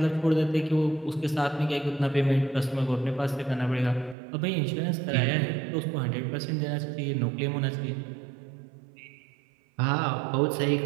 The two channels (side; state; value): left; drops out; at 4.2 s